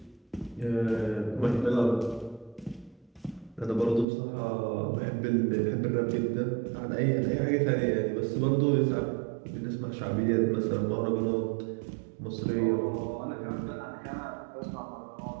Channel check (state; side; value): drops out; left; at 4.0 s